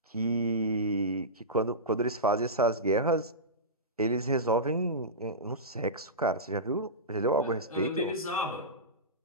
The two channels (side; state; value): both; normal; correlation -0.17